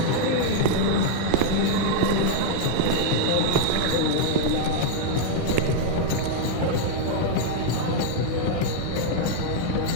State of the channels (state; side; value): different; both; correlation -0.01